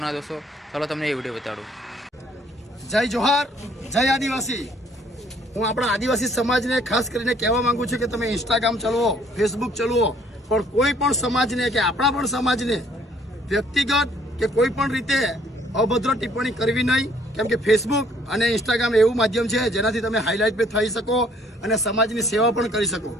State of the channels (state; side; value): normal; both; correlation 0.61